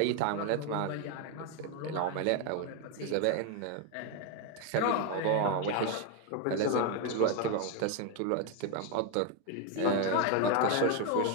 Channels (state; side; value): different; both; correlation 0.01